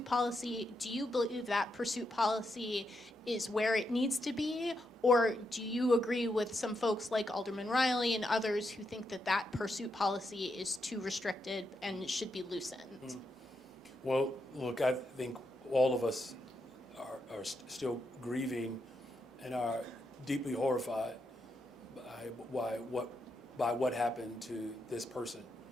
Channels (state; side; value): normal; both; correlation 0.82